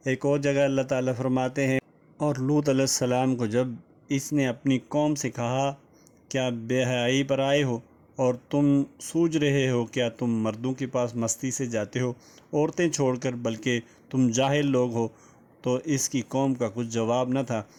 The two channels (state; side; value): identical; both; correlation 1.00